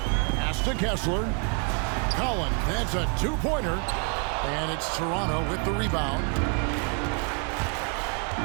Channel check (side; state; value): left; quieter; 38.5 dB